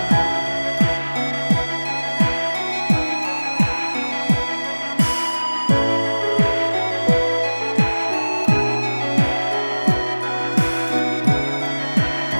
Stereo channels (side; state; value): both; inverted; correlation -1.00